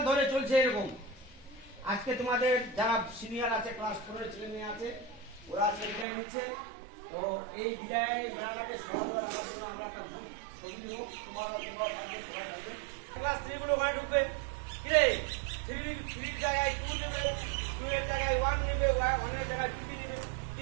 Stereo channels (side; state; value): left; drops out; at 6.1 s